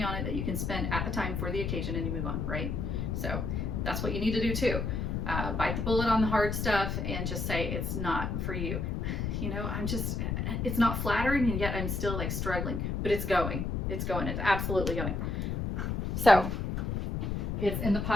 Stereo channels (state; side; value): noise; left; rumble, 1 dB below the sound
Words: on it that you can spend at the time for the occasion, and you move on, right? So that's what you need to do too. Bite the bullet on the hard stuff and just say it's not for you. It's not flattering, and yet I'm still like struggling, but it's going. It's absolutely going. So it's in the